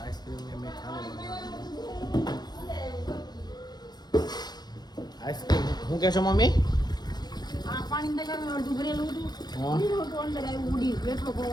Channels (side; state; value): right; late; 0.20 ms